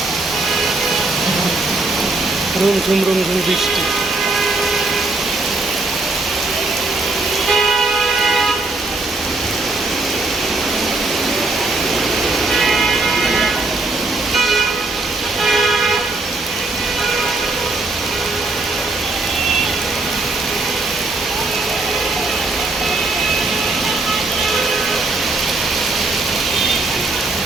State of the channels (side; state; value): left; quieter; 3.3 dB